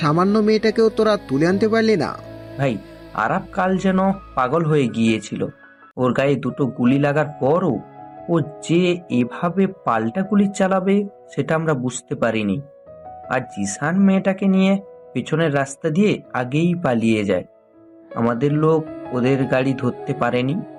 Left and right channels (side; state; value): both; identical; correlation 1.00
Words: মেয়েটাকেও তোরা তুলে আনতে পারলি না? ভাই, আরাব কাল যেন পাগল হয়ে গিয়েছিল। ওর গায়ে দুটো গুলি লাগার পরও ও যে এভাবে পাল্টা গুলি চালাবে সেটা আমরা বুঝতে পারিনি। আর জিসান মেয়েটাকে নিয়ে পেছনের রাস্তা দিয়ে আগেই পালিয়ে যায়। আমাদের লোক ওদের গাড়ি ধরতে পারেনি।